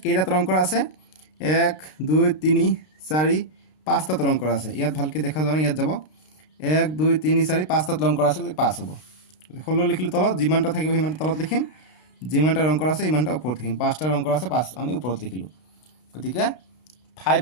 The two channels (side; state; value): right; late; 32 ms